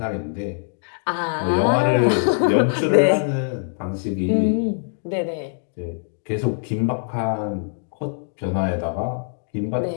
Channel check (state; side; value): silent; right; digital silence